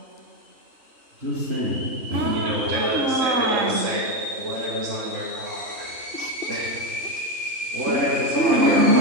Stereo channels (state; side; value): late; left; 3.3 ms